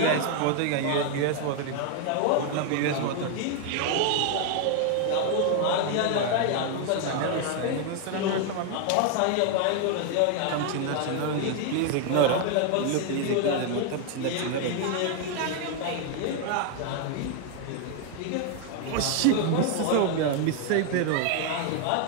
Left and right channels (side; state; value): both; different; correlation 0.00